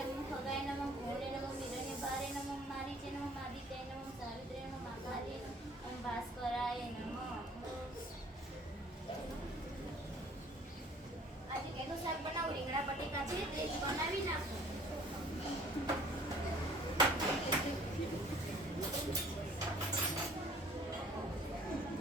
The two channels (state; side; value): normal; both; correlation 0.54